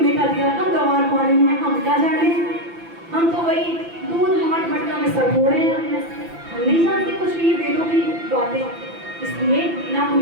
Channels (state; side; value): late; left; 5.9 ms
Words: का अधिकार। हम गंवार पानी में, हम क्या जाने, हम तो वही दूध हाथ मटका में सर फोड़े हैं, हम नहीं जानते कुछ भी वेदों की बातें। इसलिए ना